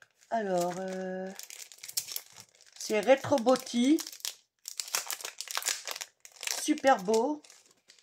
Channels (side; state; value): both; identical; correlation 1.00